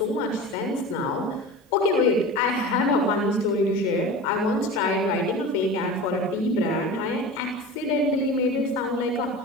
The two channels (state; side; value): normal; both; correlation 0.33